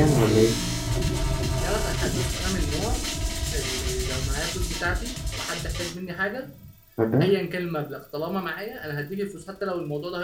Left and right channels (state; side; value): identical; both; correlation 1.00